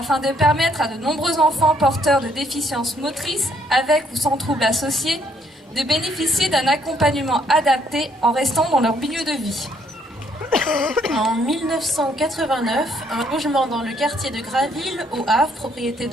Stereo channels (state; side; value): normal; both; correlation 0.68